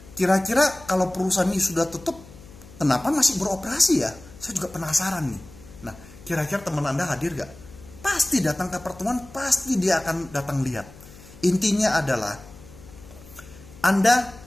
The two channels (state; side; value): noise; left; hum, 20 dB below the sound